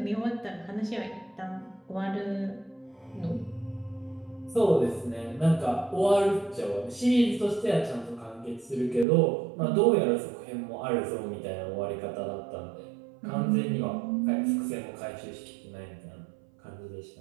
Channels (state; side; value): drops out; left; at 9.1 s